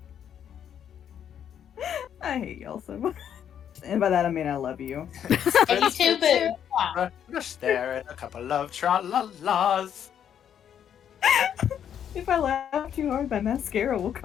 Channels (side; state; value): right; quieter; 9.1 dB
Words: I hate y'all so much. And by that I mean I love you. And you too, boo. Wow. Just there and a couple of tra-la-las. If I laugh too hard, my mascara will